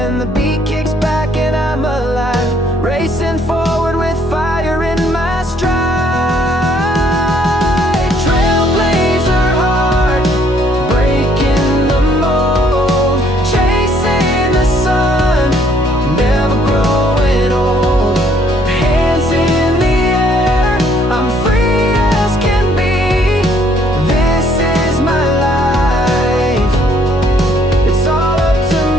the beat kicks back and I'm alive, racing forward with fire in my stride. Trailblazer heart, breaking the mold, chasing the sun, never growing old. Hands in the air, I'm free as can be. This is my life, it's all up to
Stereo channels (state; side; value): normal; both; correlation 0.65